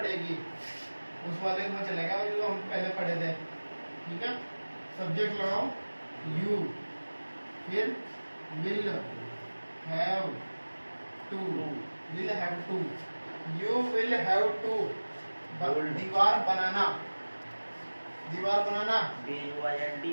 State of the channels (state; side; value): inverted; both; correlation -1.00